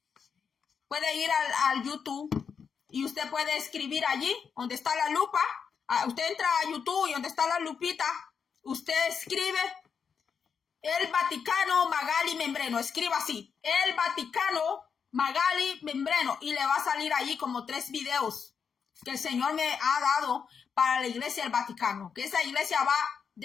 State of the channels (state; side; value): quieter; right; 6.5 dB